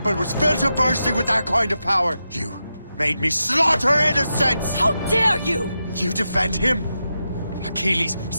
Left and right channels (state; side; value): inverted; both; correlation -0.88